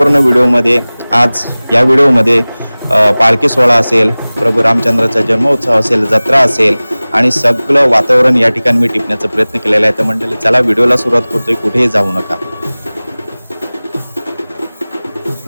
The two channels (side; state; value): both; inverted; correlation -0.99